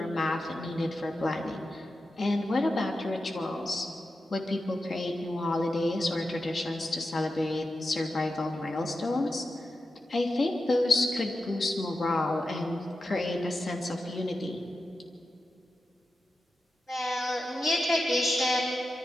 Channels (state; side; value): normal; both; correlation 0.90